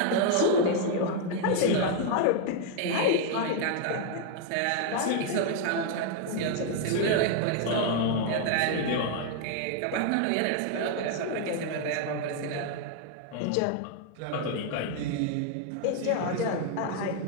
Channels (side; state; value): both; different; correlation 0.00